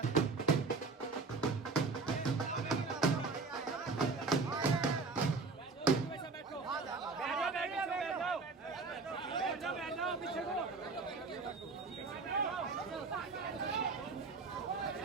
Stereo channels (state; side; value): quieter; left; 4.1 dB